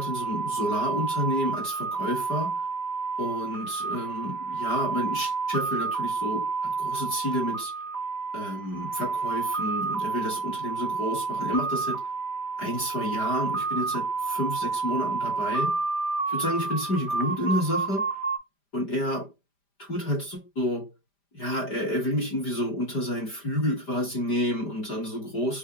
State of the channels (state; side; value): late; right; 5.0 ms